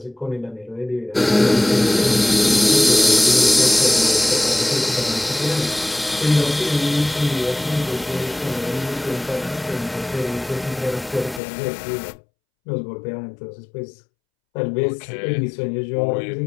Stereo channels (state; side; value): drops out; right; at 11.4 s